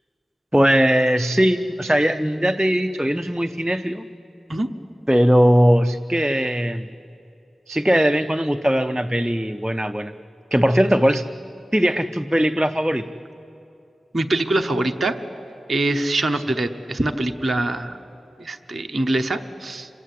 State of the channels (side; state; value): both; normal; correlation 0.96